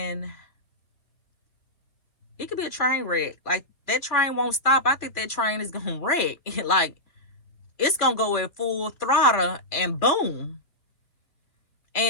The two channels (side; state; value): right; late; 2.4 ms